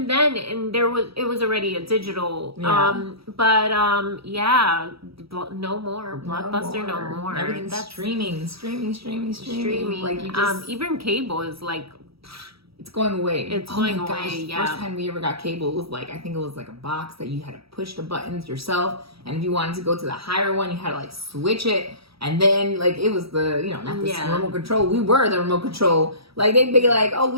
then, and it was already a digital. No more Blockbuster, no more. Everything's streaming. Like you just even cable is like. It's going away. It's going away, yeah. First time we ever got cable, it was like, I think it was like a box that you had to push the buttons yourself. And if you wanted to go to the higher one, you had to like switch it. And then like, it was the, you know, not the remote control. We were the remote control. Like they'd be like, oh,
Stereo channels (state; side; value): late; left; 0.76 ms